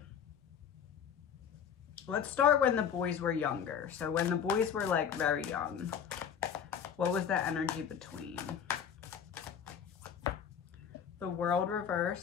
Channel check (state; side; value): quieter; right; 8.0 dB